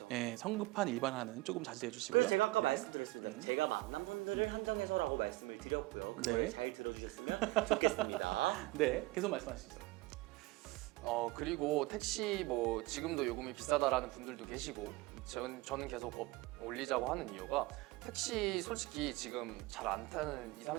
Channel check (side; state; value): left; quieter; 20.6 dB